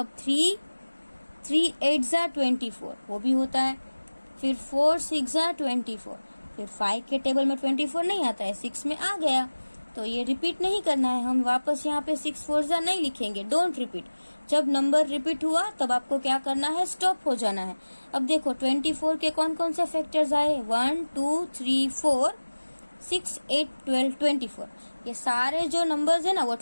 3 8 जा 24 वो भी होता है। फिर 4 6 जा 24, फिर 5 के टेबल में 24 नहीं आता है, 6 में आ गया, तो ये रिपीट नहीं करना है, हम वापस यहाँ पे 6 4 जा नहीं लिखेंगे, डोंट रिपीट। जब नंबर रिपीट हुआ तब आपको क्या करना है, स्टॉप हो जाना है। अब देखो 24 के कौन कौन से फैक्टर्स आए, 1 2 3 4 6 8 12 24। ये सारे जो नंबर्स है ना वो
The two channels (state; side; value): inverted; both; correlation -1.00